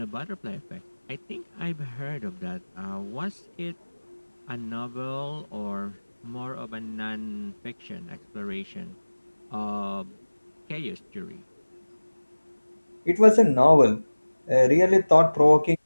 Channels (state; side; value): inverted; both; correlation -1.00